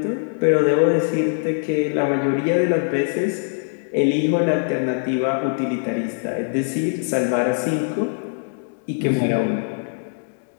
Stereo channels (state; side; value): silent; right; digital silence